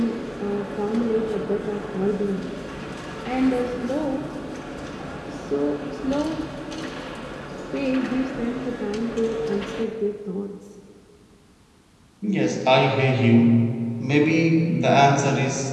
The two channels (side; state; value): both; identical; correlation 1.00